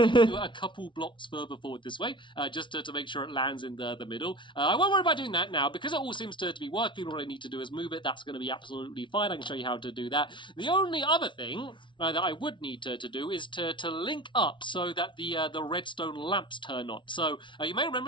to do a couple blocks further forward this way, just to make sure it lands in the middle. I won't worry about doing that now, because it all seems to be working. All I need to do is move it. That's going to be absolutely fine. I can show you how to do that. The only other thing that I would need to do is to link up so that the redstone lamps turn on. So you may remember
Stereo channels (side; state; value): right; late; 0.24 ms